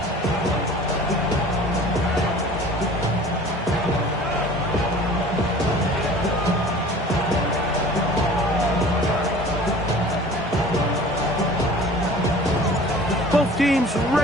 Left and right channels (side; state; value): both; normal; correlation 0.45